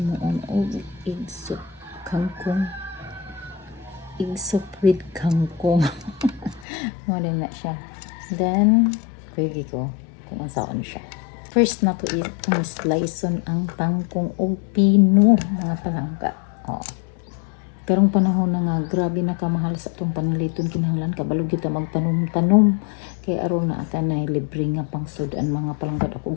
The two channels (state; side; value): drops out; right; at 6.7 s